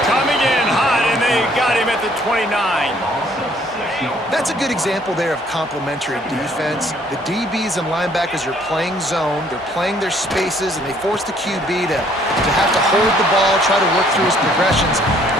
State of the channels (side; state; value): both; normal; correlation 0.62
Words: coming in hot, and they got him at the 29. That's a good example there of complementary defense. The DBs and linebackers are playing zone, they're playing their spaces, and they force the QB to have to hold the ball, try to work through his progressions, and